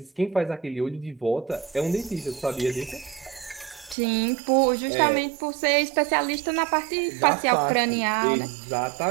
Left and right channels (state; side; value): drops out; left; at 4.0 s